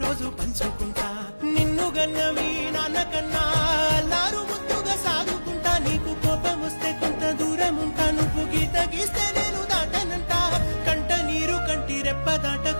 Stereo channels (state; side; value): inverted; both; correlation -1.00